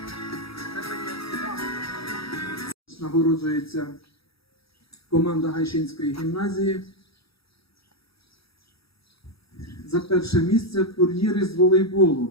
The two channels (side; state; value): right; late; 0.76 ms